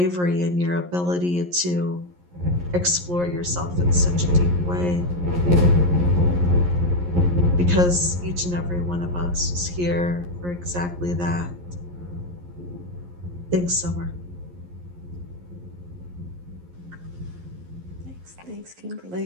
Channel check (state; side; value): late; left; 11 ms